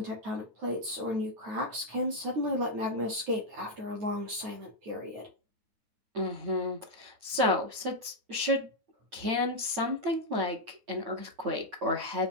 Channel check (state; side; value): late; left; 9.4 ms